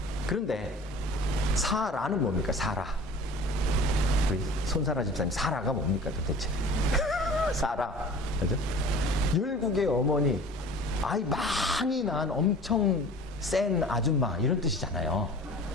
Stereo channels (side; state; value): both; normal; correlation 0.43